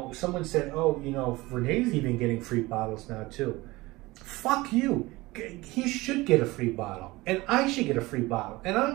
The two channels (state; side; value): quieter; left; 20.7 dB